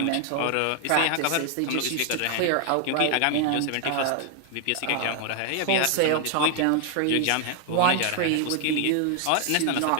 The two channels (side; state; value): both; different; correlation 0.00